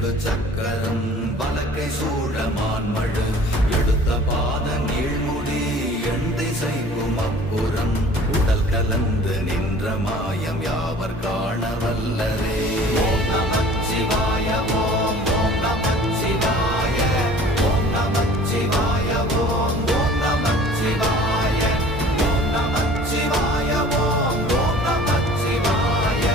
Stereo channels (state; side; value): normal; both; correlation 0.47